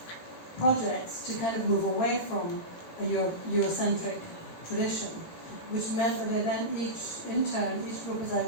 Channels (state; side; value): late; right; 18 ms